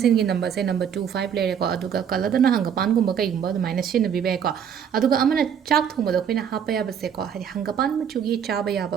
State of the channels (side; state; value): left; quieter; 8.1 dB